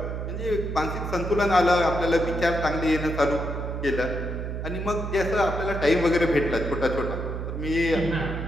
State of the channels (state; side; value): noise; right; hum, 4 dB below the sound